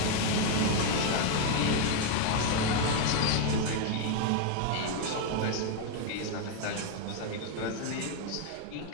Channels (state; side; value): different; both; correlation 0.01